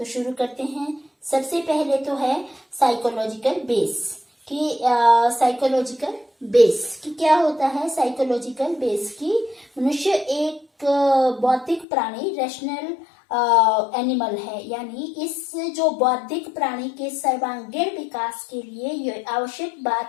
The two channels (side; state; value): right; drops out; at 11.9 s